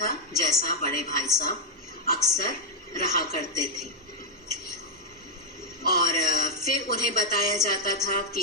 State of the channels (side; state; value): both; normal; correlation -0.02